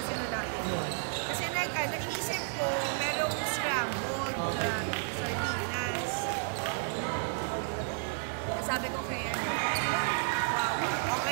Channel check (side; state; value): left; silent; digital silence